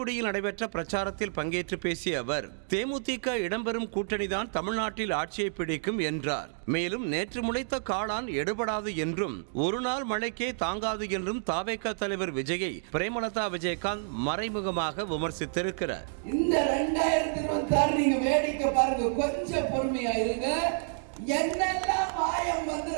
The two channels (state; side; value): silent; left; digital silence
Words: நடைபெற்ற பிரச்சாரத்தில் பங்கேற்று பேசிய அவர், தேமுதிக இடம்பெறும் கூட்டணிதான் தமிழ்நாட்டில் ஆட்சியை பிடிக்கும் என்றார். மேலும் நேற்று முளைத்த காளான் எடுபடாது என்றும் ஒரு நாள் மழைக்கே தாங்காது என்றும் தாவேக தலைவர் விஜயை பிரேமலதா விஜயகாந்த் மறைமுகமாக விமர்சித்திருக்கிறார். இந்த 2026 நீங்க வேடிக்கை பாருங்க, கொஞ்சம் பொறுமையா இருங்க. என்னெல்லாம் மாயம்